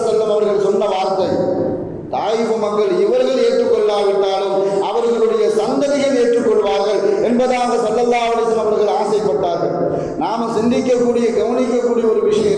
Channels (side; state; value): both; identical; correlation 1.00